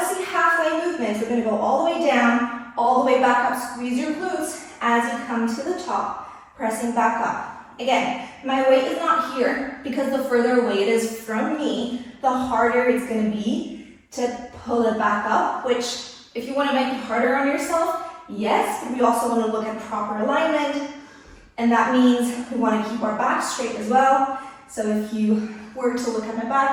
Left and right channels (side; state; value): both; identical; correlation 1.00